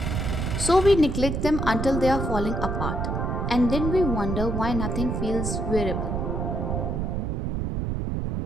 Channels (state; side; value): noise; right; rumble, 1 dB below the sound